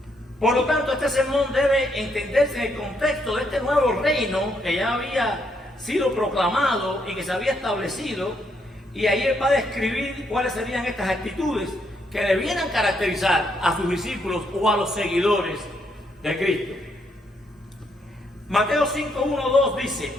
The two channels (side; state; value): both; normal; correlation 0.75